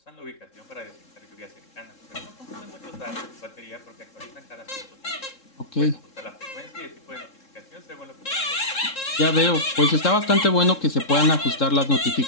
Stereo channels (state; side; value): late; right; 3.7 ms